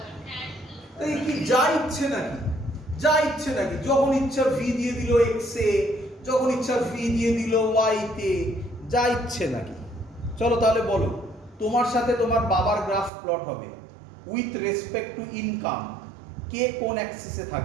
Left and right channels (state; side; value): drops out; left; at 13.1 s